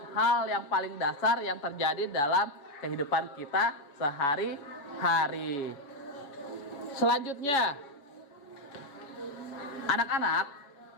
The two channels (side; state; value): right; late; 7.2 ms